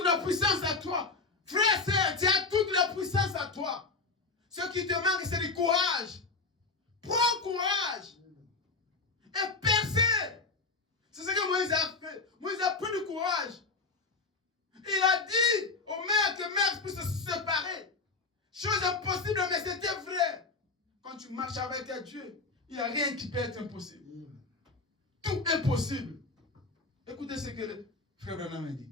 la puissance à toi. Frère, sœur, tu as toute la puissance à toi. Ce qui te manque, c'est du courage. Prends courage. Et percez. C'est ce que Moïse a fait. Moïse a pris du courage. Il a dit aux mers que mers puissent se séparer. Chose impossible, mais c'était vrai. Quand tu marches avec Dieu, il n'y a rien qui peut être impossible. Tout est possible. Écoutez ce que le frère Branham a dit.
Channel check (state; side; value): quieter; right; 3.9 dB